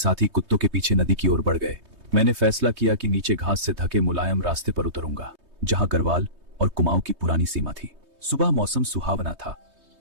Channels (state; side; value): late; left; 3.2 ms